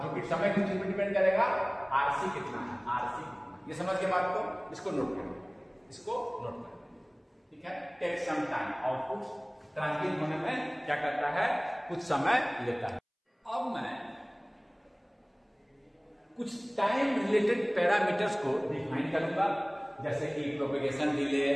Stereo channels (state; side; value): identical; both; correlation 1.00